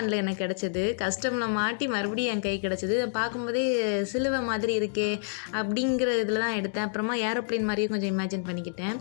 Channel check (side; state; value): right; silent; digital silence